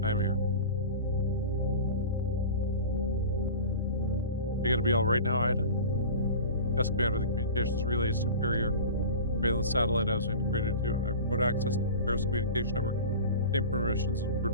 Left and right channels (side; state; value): both; inverted; correlation -0.35